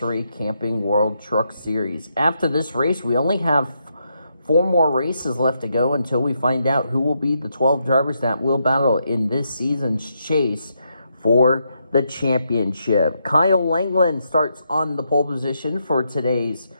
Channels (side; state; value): both; inverted; correlation -0.80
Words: Camping World Truck Series. After this race, we only have 4 more races left to go until we find out who will be the 12 drivers that will battle in this season's chase for the championship. Kyle Langland starts on the pole position for today's